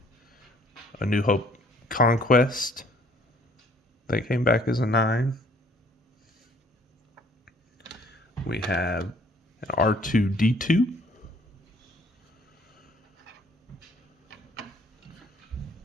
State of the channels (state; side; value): normal; both; correlation 0.59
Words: New Hope Conquest that came back as a 9. We have an R2-D2.